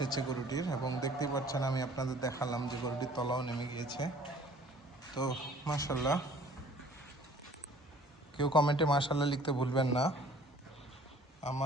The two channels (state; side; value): normal; both; correlation 0.53